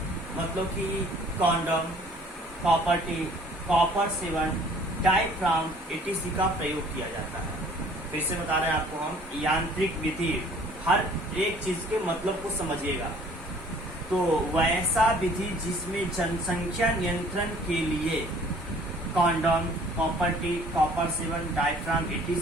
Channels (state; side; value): normal; both; correlation 0.55